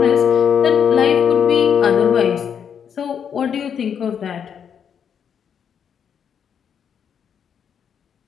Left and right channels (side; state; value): right; quieter; 7.8 dB